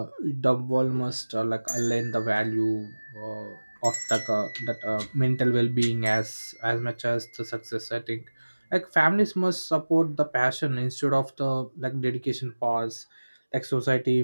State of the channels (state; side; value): inverted; both; correlation -1.00